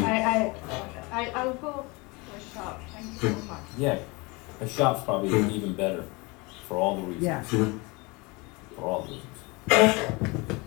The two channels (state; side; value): quieter; right; 26.6 dB